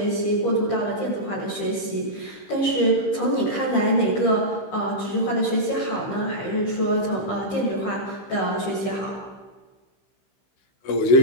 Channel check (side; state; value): right; late; 15 ms